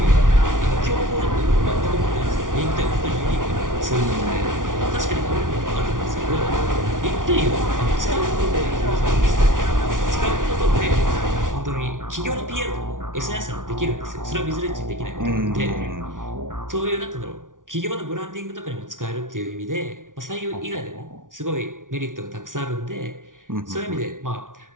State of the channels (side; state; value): left; late; 0.88 ms